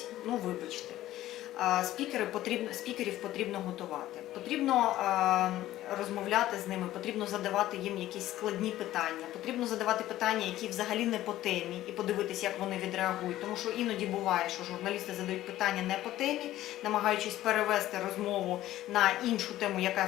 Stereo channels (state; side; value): quieter; right; 14.4 dB